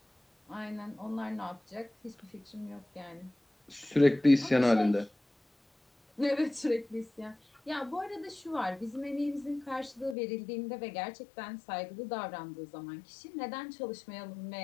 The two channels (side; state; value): right; drops out; at 10.2 s